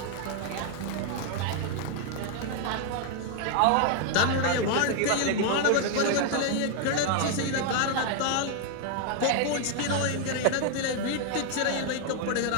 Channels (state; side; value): different; both; correlation 0.00